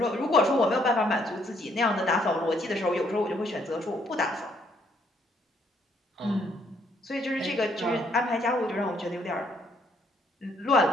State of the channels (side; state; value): both; normal; correlation 0.68